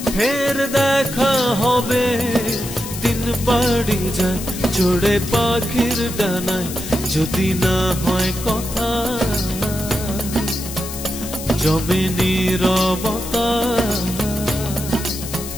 ফের দেখা হবে। দিন বাড়ি যায় চড়ে পাখির ডানায়, যদি না হয় কথা জমে নীরবতা।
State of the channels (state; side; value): noise; left; hiss, 10 dB below the sound